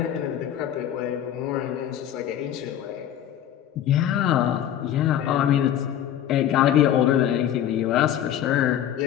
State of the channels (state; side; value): quieter; right; 10.8 dB